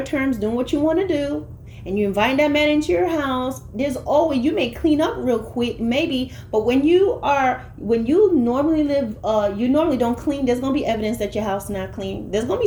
terms, doing what you want to do, and you invite that man into your house. There's always, you may clean up real quick, maybe, but when you normally live, you normally don't clean. There's gonna be evidence that your house is not clean. There's gonna be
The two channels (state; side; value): identical; both; correlation 1.00